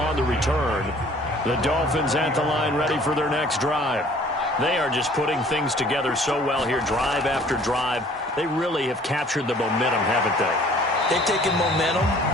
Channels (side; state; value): both; normal; correlation 0.53